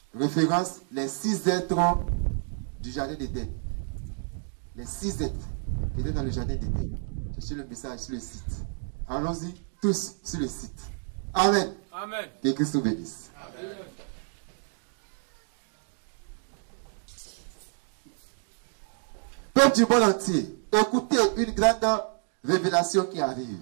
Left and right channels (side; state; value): left; silent; 59 dB below the other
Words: Référence, les 6 êtres du jardin d'Éden. Les 6 êtres qui étaient dans le jardin d'Éden. Cherchez le message sur le site. Allons-y tous sur le site. Amen. Amen. Que Christ vous bénisse. Amen. Peuple du monde entier, écoutez une grande révélation qui arrive.